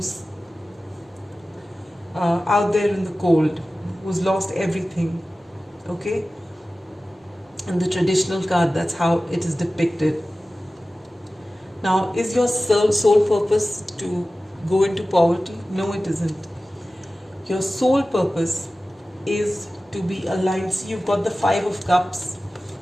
out there in the cold, who's lost everything. Okay? In the traditional card, that's how it is depicted. Now, is your soul purpose to go into poverty? No, it isn't. Your sole purpose is to be aligned. See, you've got the Five of Cups.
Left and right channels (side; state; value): both; normal; correlation 0.96